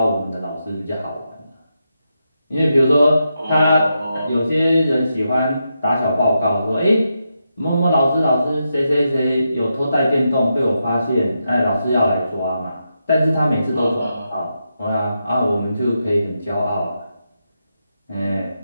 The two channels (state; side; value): inverted; both; correlation -0.85